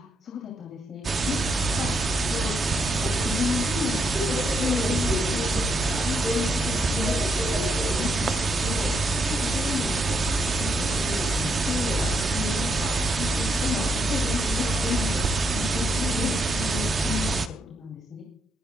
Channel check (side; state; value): both; normal; correlation 0.78